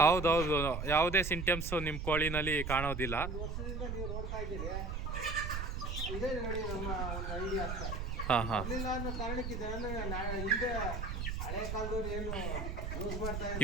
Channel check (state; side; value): noise; right; rumble, 4 dB below the sound